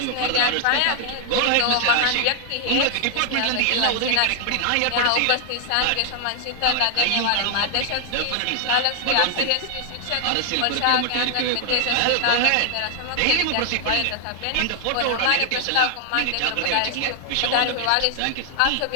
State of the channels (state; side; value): different; both; correlation 0.00